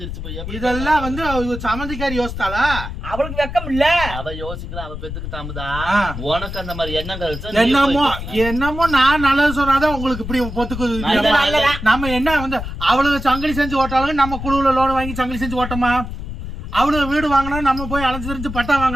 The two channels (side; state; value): left; noise; rumble, 8 dB below the sound